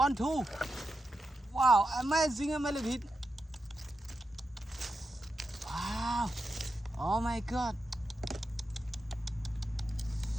2. Wow, amazing millipede. Wow, oh my god.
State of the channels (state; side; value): normal; both; correlation 0.88